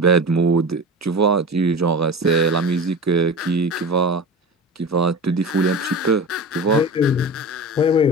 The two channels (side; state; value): both; normal; correlation 0.31